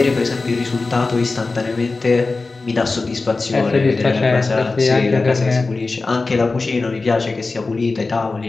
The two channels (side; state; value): right; quieter; 3.7 dB